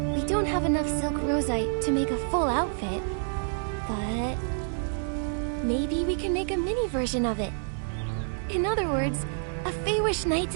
We don't have enough silk rosite to make a full outfit, but maybe we can make a mini version of it. In other words, a Feywish Knight's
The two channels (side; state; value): left; silent; digital silence